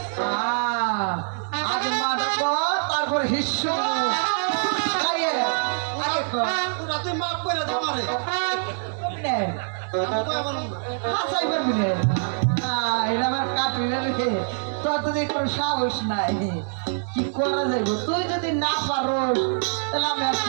আগে মা ডাকো তারপর হিস্সু পুরা তুই মাফ করে দে আমারে হাসাই পারবি রে এটা আমার কাটবি না রে তোর তো কোনো সাহস নাই কি করা যাইব তুই যদি না পারোস তাহলে আমি আর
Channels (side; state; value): left; silent; digital silence